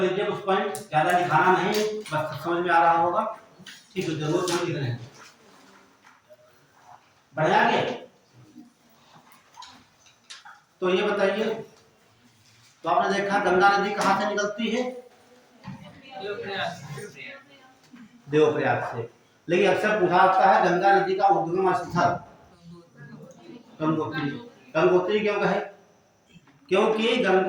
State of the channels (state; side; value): identical; both; correlation 1.00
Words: कुछ पॉइंट, ज्यादा लिखाना नहीं, बस समझ में आ रहा होगा, ठीक है, जरूर समझ लिख रहे हैं। बढ़िया आगे, तो ये बताइए, तो आपने देखा गंगा नदी कहाँ से निकलती है, देवप्रयाग से। लेकिन अक्सर पूछा जाता है गंगा नदी का उद्गम स्थल गंगोत्री, गंगोत्री क्यों कहे, क्योंकि